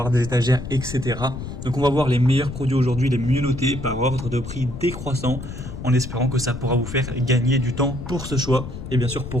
des étagères, etc. Donc on va voir les meilleurs produits aujourd'hui, les mieux notés par ordre de prix décroissant, en espérant que ça pourra vous faire gagner du temps pour ce choix. Et bien sûr,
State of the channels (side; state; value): left; noise; rumble, 9 dB below the sound